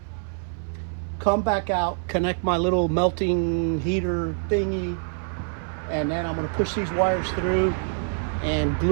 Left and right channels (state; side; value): silent; left; 58 dB below the other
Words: come back out, connect my little melting heater thingy, and then I'm gonna push these wires through and